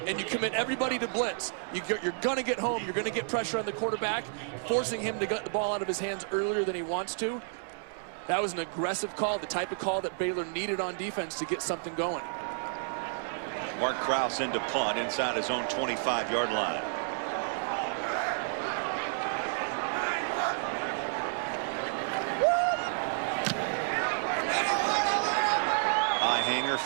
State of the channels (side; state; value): left; silent; 57 dB below the other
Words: and you commit everybody to blitz. You're going to get home. You're going to get pressure on the quarterback, forcing him to get the ball out of his hands earlier than he wants to. That was an aggressive call, the type of call that Baylor needed on defense to get something going. Mark Krause into punt inside his own 25-yard line. High hanger,